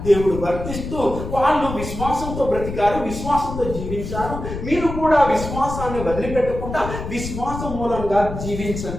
దేవుడు వర్తిస్తూ వాళ్ళు విశ్వాసంతో బ్రతికారు, విశ్వాసంతో జీవించారు. మీరు కూడా విశ్వాసాన్ని వదిలిపెట్టకుండా విశ్వాసం మూలంగా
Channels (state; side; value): noise; left; rumble, 7 dB below the sound